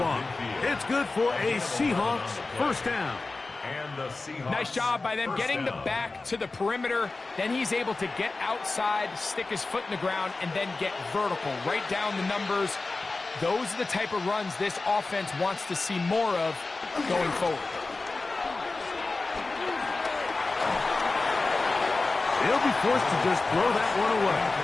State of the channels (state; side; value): quieter; right; 3.5 dB